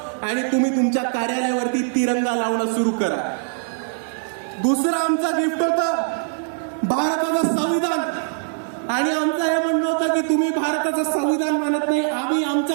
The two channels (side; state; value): left; silent; digital silence